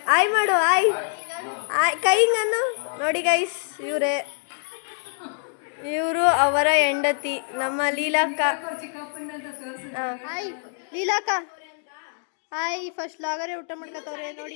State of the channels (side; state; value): right; silent; digital silence